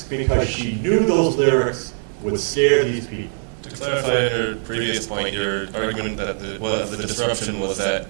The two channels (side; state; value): left; silent; digital silence